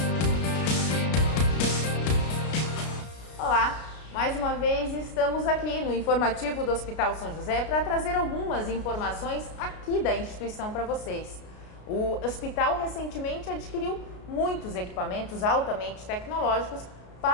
Olá! Mais uma vez estamos aqui no informativo do Hospital São José para trazer algumas informações aqui da instituição para vocês. O hospital recentemente adquiriu muitos equipamentos altamente tecnológicos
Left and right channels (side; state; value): right; late; 33 ms